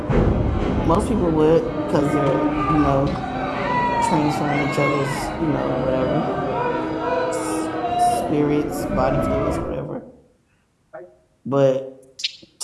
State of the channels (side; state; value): both; identical; correlation 1.00